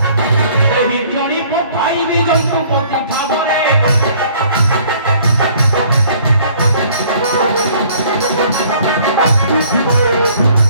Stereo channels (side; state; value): both; inverted; correlation -0.57